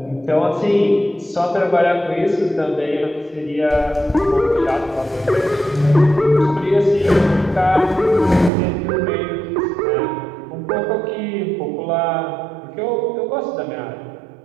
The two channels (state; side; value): drops out; left; at 8.5 s